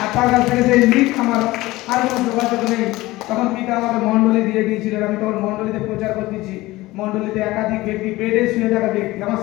আর তার কাছ থেকে সেই লিঙ্ক আমার আর কোনো যোগাযোগ নেই। তখন পিতা আমাকে মণ্ডলী দিয়ে দিয়েছিলেন, আমি তখন মণ্ডলীতে প্রচার করতেছি। মণ্ডলীতে একাধিক ব্যক্তি, বেডে শুয়ে থাকা ব্যক্তি আমার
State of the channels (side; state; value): right; quieter; 18.9 dB